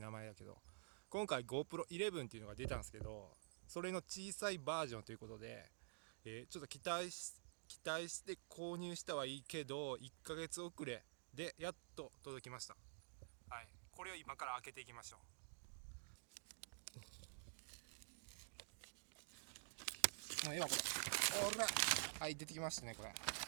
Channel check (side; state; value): left; silent; digital silence